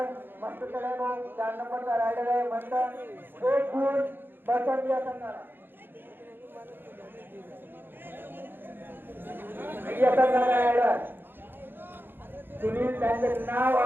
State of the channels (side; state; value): left; late; 0.099 ms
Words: मस्त चढाई भाऊ. 4 नंबरचा रायडर आहे म्हणतात 1 गुण पसंत या संघाला. या संघाचा रायडर सुनील त्यांचं नाव